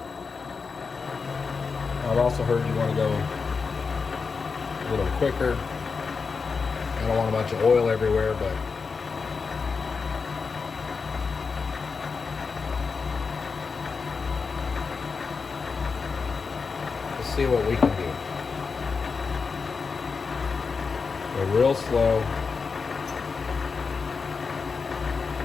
I've also heard you want to go a little quicker. I don't want a bunch of oil everywhere, but let's see what we can do. Go real slow.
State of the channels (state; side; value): quieter; right; 5.0 dB